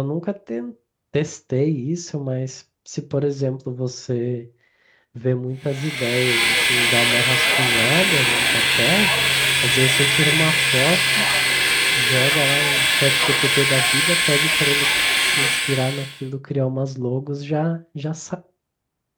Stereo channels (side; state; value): both; identical; correlation 1.00